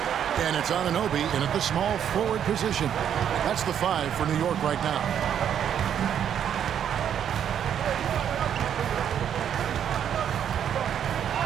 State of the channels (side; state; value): left; quieter; 9.1 dB